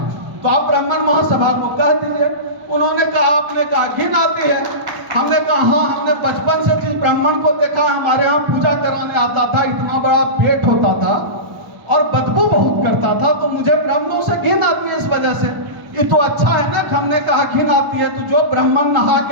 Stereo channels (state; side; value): late; left; 1.0 ms